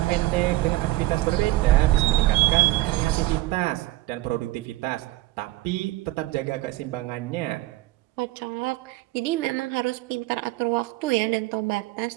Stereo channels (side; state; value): left; quieter; 17.9 dB